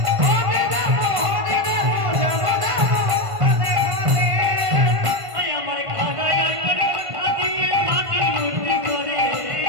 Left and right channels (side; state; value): left; late; 1.5 ms